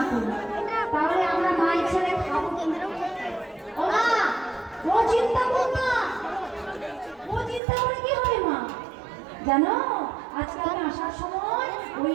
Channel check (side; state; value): left; drops out; at 7.6 s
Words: করি তাহলে আমরা মায়ের ছেলে খাবো কেন্দ্র। ও মা, ও চিন্তা করো না, ও চিন্তা করে কি হবে মা? জানো আজকে আমি আসার সময় ওই